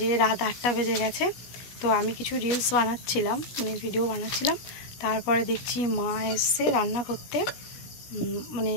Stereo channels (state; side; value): late; right; 16 ms